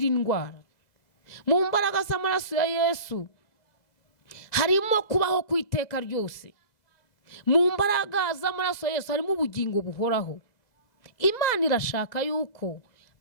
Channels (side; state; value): right; late; 2.0 ms